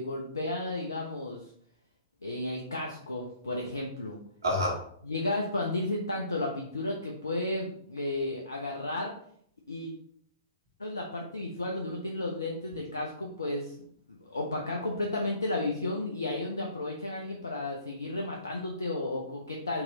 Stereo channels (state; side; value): inverted; both; correlation -0.59